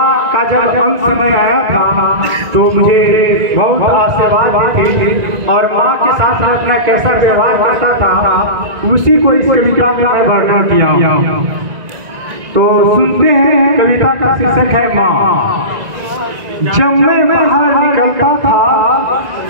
का जब अंत समय आया था तो मुझे बहुत आशीर्वाद दी थी और माँ के साथ में अपना कैसा व्यवहार करता था उसी को इस कविता में मैं वर्णन किया। तो सुनते हैं, कविता का शीर्षक है माँ। जब मैं बाहर निकलता था,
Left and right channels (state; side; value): late; left; 1.9 ms